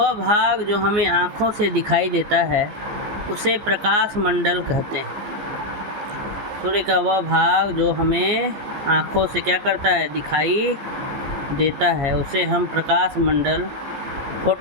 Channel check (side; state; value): left; late; 14 ms